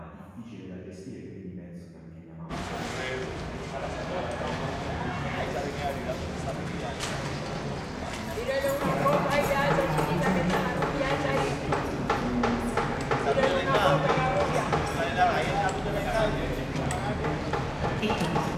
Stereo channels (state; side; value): identical; both; correlation 1.00